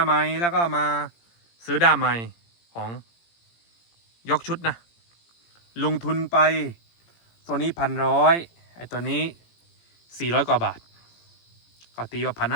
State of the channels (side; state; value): right; late; 17 ms